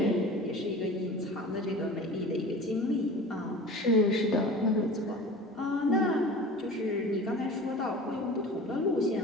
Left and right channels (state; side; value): normal; both; correlation 0.38